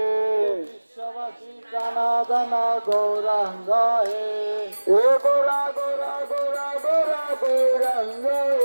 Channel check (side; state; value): both; inverted; correlation -1.00